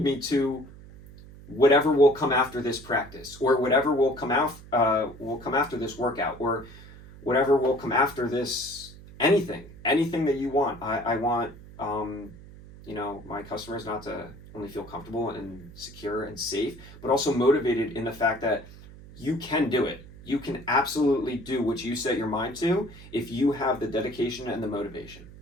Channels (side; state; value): right; noise; hum, 18 dB below the sound